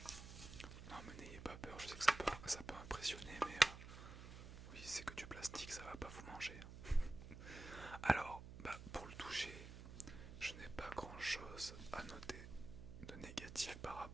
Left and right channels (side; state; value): right; noise; hum, 11 dB below the sound